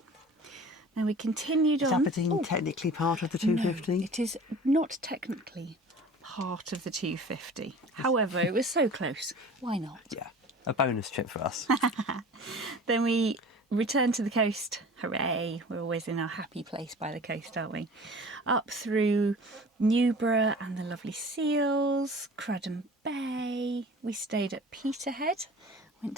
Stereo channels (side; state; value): both; normal; correlation 0.42